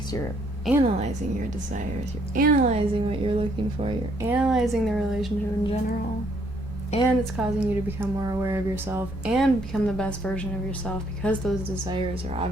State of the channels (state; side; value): normal; both; correlation 0.68